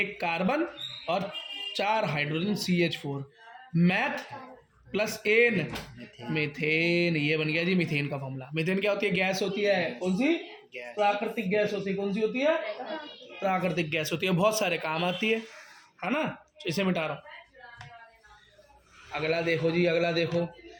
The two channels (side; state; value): both; identical; correlation 1.00